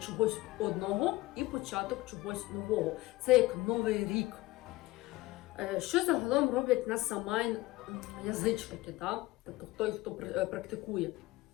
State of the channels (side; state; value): right; quieter; 19.3 dB